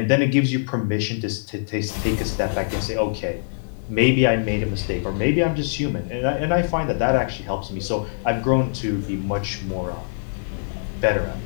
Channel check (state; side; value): silent; right; digital silence